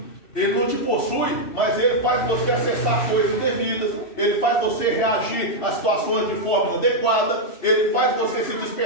Ele não te possui, mas ele faz você acessar coisas indevidas, ele faz você reagir a situações de forma inadequada, ele faz você se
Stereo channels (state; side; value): late; right; 2.6 ms